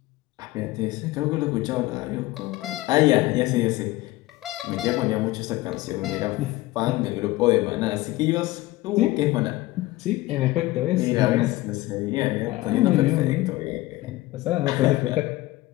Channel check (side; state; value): right; quieter; 18.6 dB